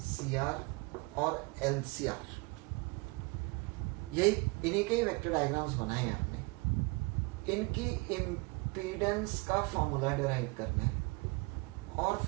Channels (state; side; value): quieter; left; 27.5 dB